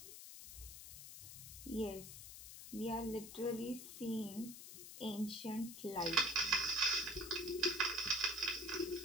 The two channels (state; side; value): noise; left; hiss, 12 dB below the sound